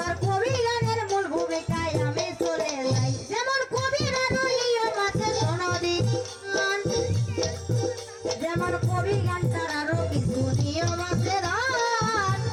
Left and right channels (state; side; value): identical; both; correlation 1.00